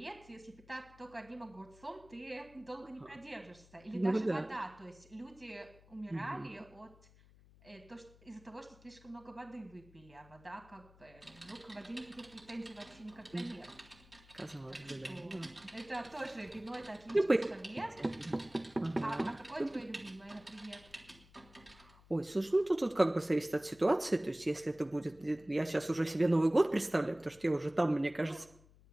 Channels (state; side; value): noise; left; hum, 25 dB below the sound